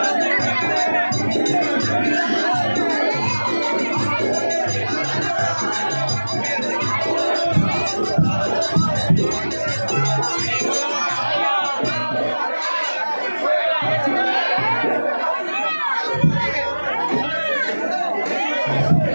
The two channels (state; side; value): inverted; both; correlation -1.00